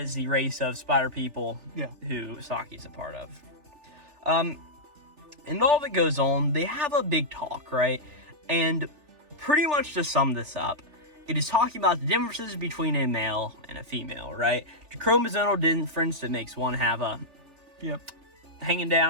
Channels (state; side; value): late; left; 3.4 ms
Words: the race of spider people who Saki's a part of. And all that goes on, they have a big talk, right? And pretty much to sum this up, it is talking about the differences between a male and a female, right? The chromosomal difference that makes one have a hanging